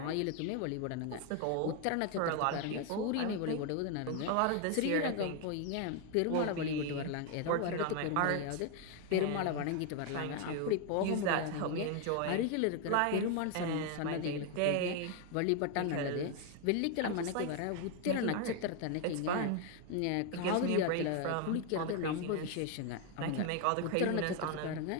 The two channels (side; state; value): both; different; correlation 0.01